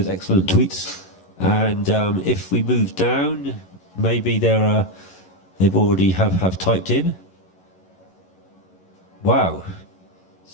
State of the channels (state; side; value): late; right; 11 ms